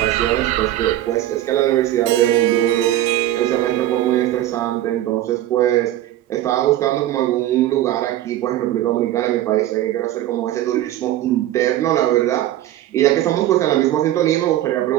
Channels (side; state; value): left; quieter; 13.6 dB